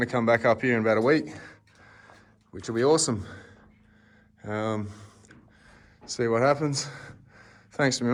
to come back up here in about a week, which will be awesome. See what happens. Thanks to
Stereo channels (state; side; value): identical; both; correlation 1.00